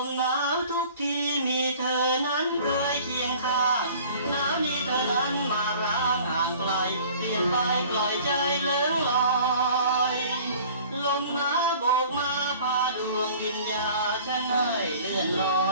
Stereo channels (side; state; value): both; inverted; correlation -0.48